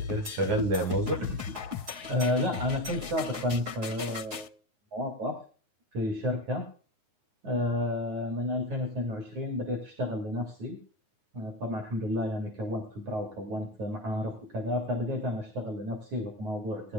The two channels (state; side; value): late; left; 9.5 ms